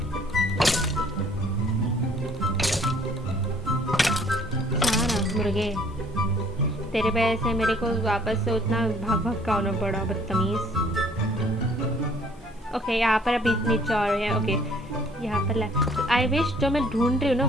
मुर्गे तेरे वजह से मेरे को वापस से उतना भाग भाग का होना पड़ा, बदतमीज। ओके यहाँ पर अभी नीचे और है। ओके यहाँ पर आई विश जो मैं ढूंढ रही हूँ ना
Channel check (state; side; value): normal; both; correlation 0.59